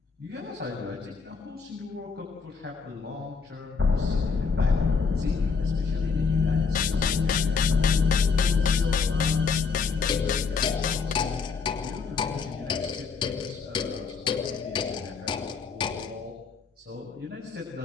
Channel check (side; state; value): right; quieter; 5.2 dB